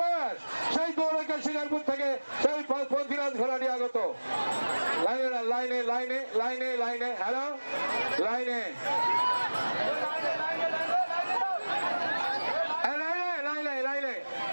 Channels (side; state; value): both; inverted; correlation -1.00